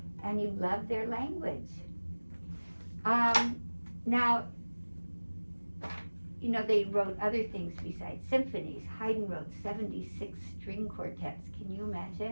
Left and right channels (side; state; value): both; inverted; correlation -1.00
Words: and you love their language. Now, you know, they wrote other things besides symphonies. Haydn wrote 76 string quartets. Can you